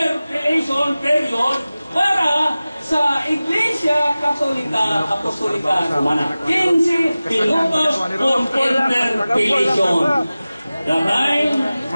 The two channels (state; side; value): inverted; both; correlation -0.97